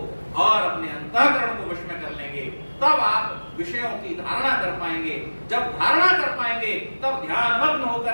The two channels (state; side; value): inverted; both; correlation -1.00